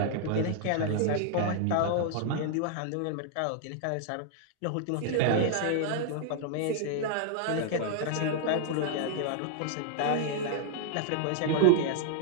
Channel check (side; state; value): both; different; correlation -0.01